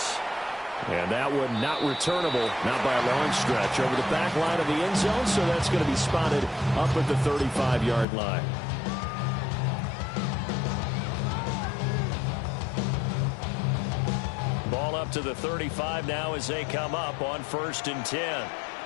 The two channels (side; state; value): right; drops out; at 8.1 s